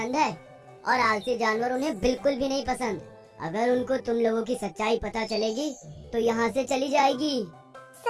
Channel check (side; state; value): both; identical; correlation 1.00